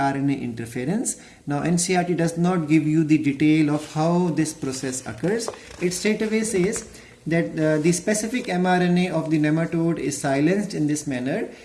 interference. Now NCERT does not give you the detail of how this process occurs. It straightaway says that the specific mRNA of the nematode is silenced in this manner,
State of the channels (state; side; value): identical; both; correlation 1.00